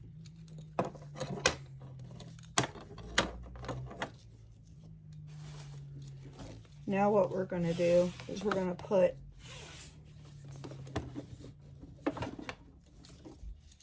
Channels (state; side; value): identical; both; correlation 1.00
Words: Now what we're going to do is we're going to put